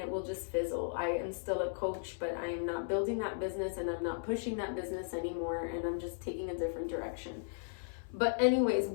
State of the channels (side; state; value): right; silent; 54 dB below the other